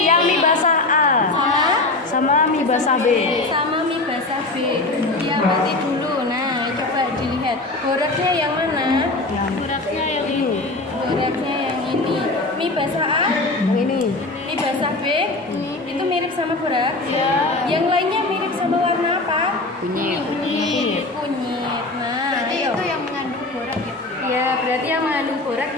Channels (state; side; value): quieter; right; 3.0 dB